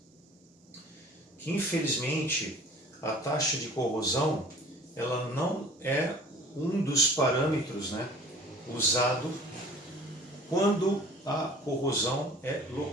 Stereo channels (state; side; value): normal; both; correlation 0.47